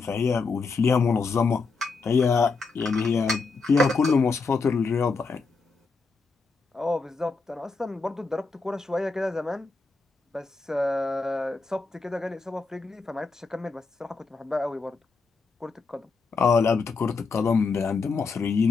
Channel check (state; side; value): quieter; right; 4.2 dB